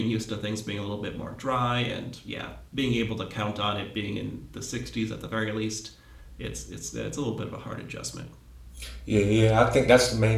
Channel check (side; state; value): both; identical; correlation 1.00